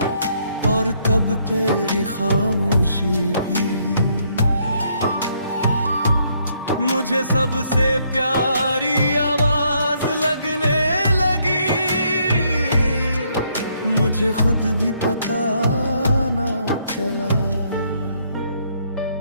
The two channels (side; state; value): both; inverted; correlation -0.71